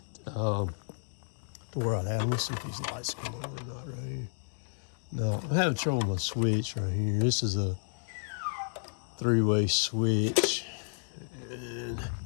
to where I'd have. Let's see if these lights come on or not right here. No, I'm having trouble with my switch right here. This is a 3-way switch. And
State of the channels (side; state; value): right; silent; digital silence